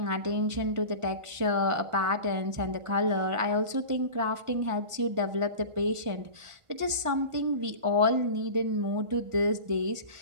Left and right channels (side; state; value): left; late; 1.5 ms